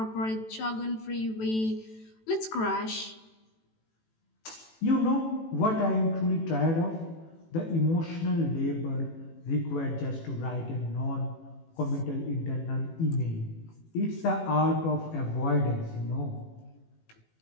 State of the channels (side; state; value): right; late; 18 ms